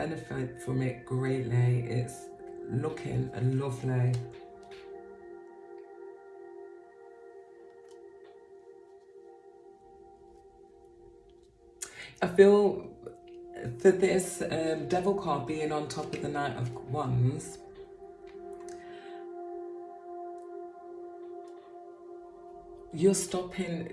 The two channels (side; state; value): both; identical; correlation 1.00